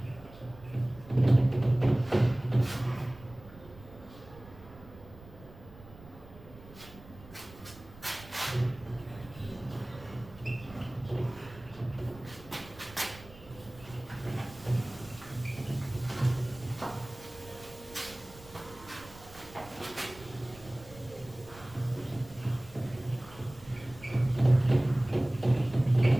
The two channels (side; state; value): right; noise; rumble, 20 dB below the sound